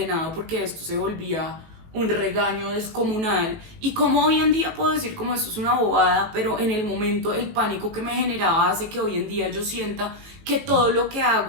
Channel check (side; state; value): left; late; 18 ms